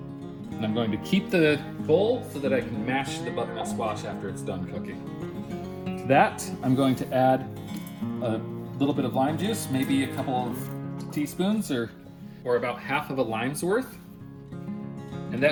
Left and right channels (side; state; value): both; identical; correlation 1.00